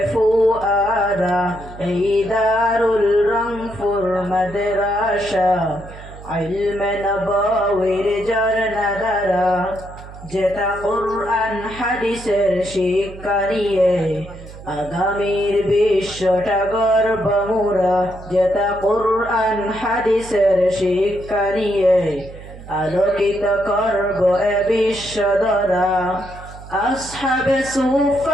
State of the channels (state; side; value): noise; right; hum, 16 dB below the sound